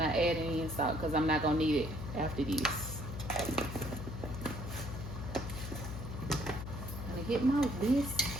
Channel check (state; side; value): noise; left; hum, 7 dB below the sound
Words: adding any salt, because I'm not going to need it after this. I'm gonna get my whisk.